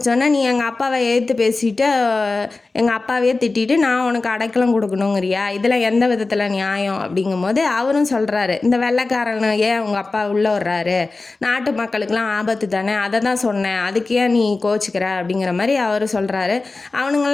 நீ எங்கள் அப்பாவை எதிர்த்து பேசிட்டு எங்கள் அப்பாவையே திட்டிட்டு நான் உனக்கு அடைக்கலம் கொடுக்கணுங்கிறியா, இதில் எந்த விதத்தில் நியாயம் அப்படிங்கும்போது அவரும் சொல்கிறாரு, இந்த வெள்ளைக்காரன் ஏன் உங்கள் அப்பா உள்ளே வர்றாரு, நாட்டு மக்களுக்கெல்லாம் ஆபத்து தானே, அதை தான் சொன்னேன், அதுக்கு ஏன் நீ கோச்சிக்கிற அப்படிங்கிற மாதிரி அவர் சொல்கிறாரு.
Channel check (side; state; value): right; quieter; 3.6 dB